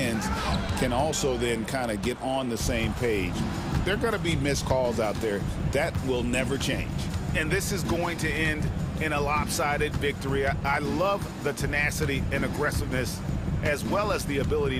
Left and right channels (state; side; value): identical; both; correlation 1.00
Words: can also then kind of get on the same page. There are going to be missed calls out there. That will never change. And this is going to end in a lopsided victory. I love the tenacity and aggressiveness as well as the ability